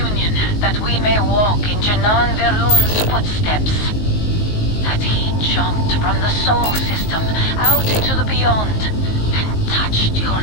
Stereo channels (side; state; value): right; late; 19 ms